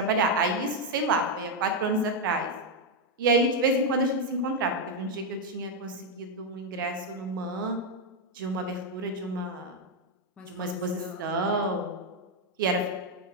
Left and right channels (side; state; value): both; normal; correlation 0.02